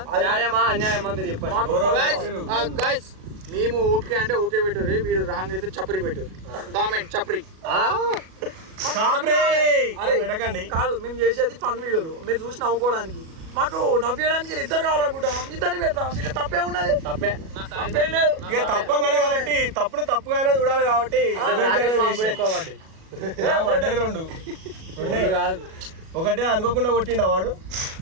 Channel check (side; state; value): left; late; 37 ms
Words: న్యాయమా అన్యాయమా మీరు చెప్పండి. మేము ఓకే అంటే ఓకే పెట్టారు. వీడు రాంగ్ అయితే చప్పరి పెట్టారు. కామెంట్ చప్పరి. అరే పెట్టకండి. కాదు, మేము చేసేది ఫన్ వీడియోలు, మీరు చూసి నవ్వుకోవడానికి. మాకు నవ్వేయడానికి ఇద్దరు కావాలనుకుంటాం, ఇద్దరిని పెడతాం. ఇక తప్పే ఉన్నది, తప్పేం లేదు. ఇక తప్పగానే కాబట్టి తప్పుగానే చూడాలి కాబట్టి రెండు ఒకటే అనుకోకుండా కొట్టిండు వాడు,